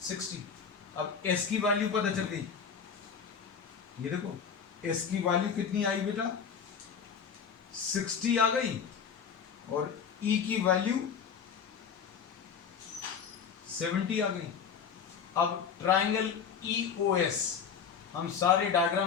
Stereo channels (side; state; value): right; quieter; 6.8 dB